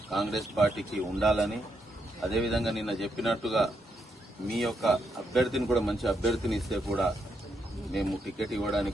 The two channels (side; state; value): both; normal; correlation 0.80